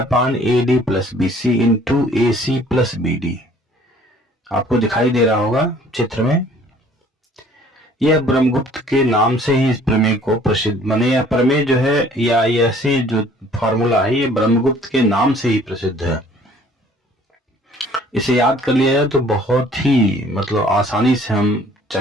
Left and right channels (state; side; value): normal; both; correlation 0.55